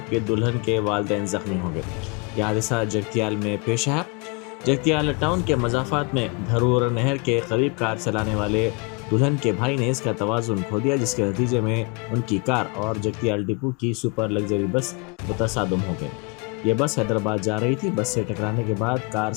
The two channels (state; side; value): quieter; right; 29.9 dB